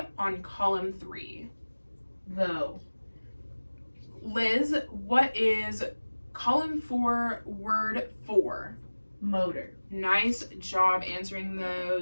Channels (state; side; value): inverted; both; correlation -1.00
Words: on column 3? Though. Liz, what is column 4, word 4? Motor. Nice job answering